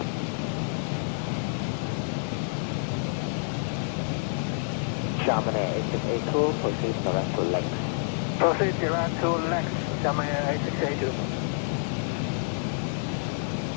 Chamonix 8682, proceed direct to Lex. Proceed direct to Lex, Chamonix 8682.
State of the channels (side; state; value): right; silent; 57 dB below the other